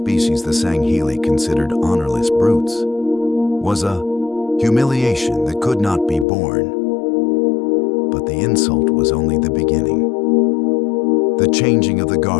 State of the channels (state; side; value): drops out; right; at 6.2 s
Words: the Sangheli considered honorless brutes, was a humiliation that could not be borne. But the insult was only the beginning. The changing of the